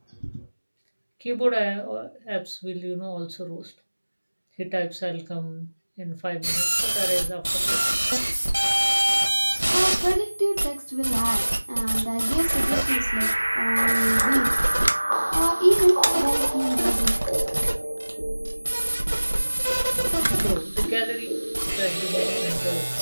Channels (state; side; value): inverted; both; correlation -1.00